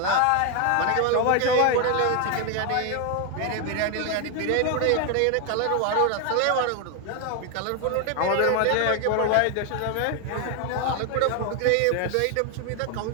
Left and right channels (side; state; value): both; different; correlation 0.01